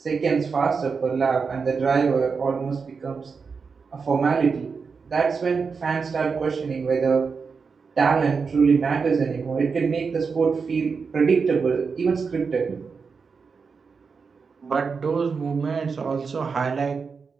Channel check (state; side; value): quieter; left; 5.3 dB